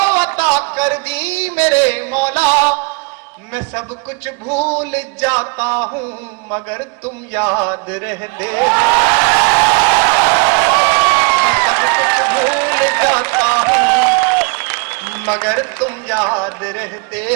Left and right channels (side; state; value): left; quieter; 32.9 dB